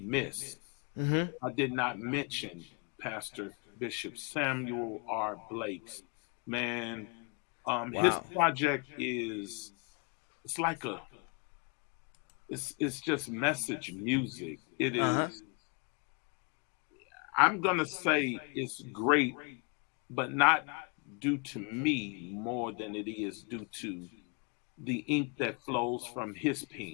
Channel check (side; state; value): right; quieter; 34.5 dB